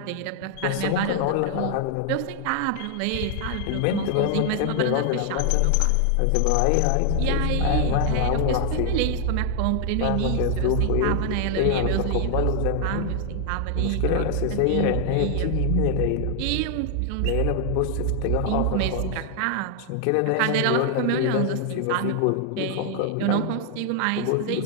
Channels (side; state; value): both; different; correlation 0.00